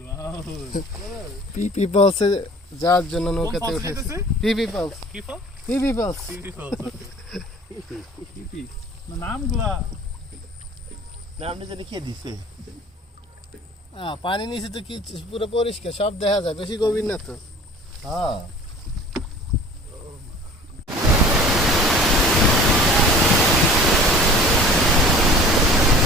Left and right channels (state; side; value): normal; both; correlation 0.45